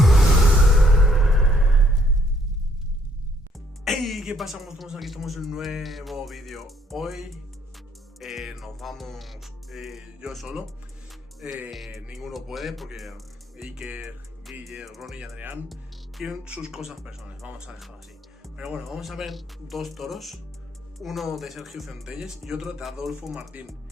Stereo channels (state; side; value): normal; both; correlation 0.67